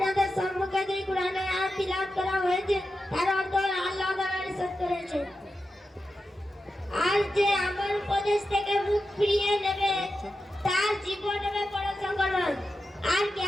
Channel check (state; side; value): normal; both; correlation 0.90